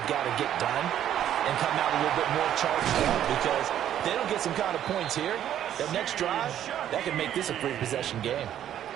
got to get done and come out a little bit more charged up, because if they don't get some kind of points here, that next drive, that could make this a free-possession game.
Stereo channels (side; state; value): left; quieter; 10.8 dB